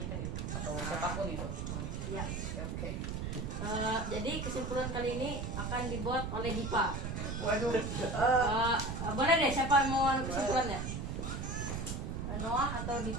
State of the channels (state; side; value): noise; right; rumble, 3 dB below the sound